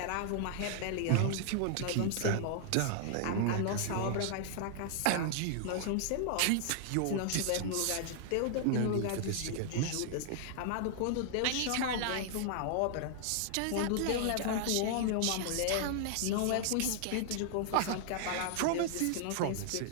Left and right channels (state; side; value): different; both; correlation -0.01